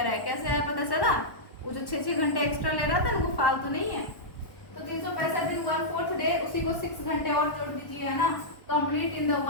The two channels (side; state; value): right; late; 1.1 ms